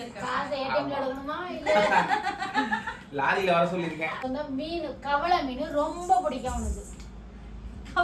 இருக்காங்க. காசு ஏடிஎம்ல எடுக்கணுமா இல்ல லாரியில வர சொல்லிருக்கேன். அந்த மீன் கவளை மீன் ரொம்ப பிடிக்கும் உனக்கு.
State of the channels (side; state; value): both; identical; correlation 1.00